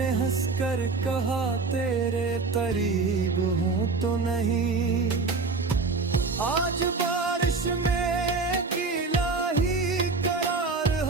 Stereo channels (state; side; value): quieter; left; 4.1 dB